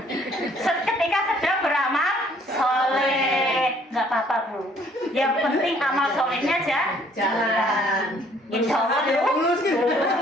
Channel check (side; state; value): both; normal; correlation 0.61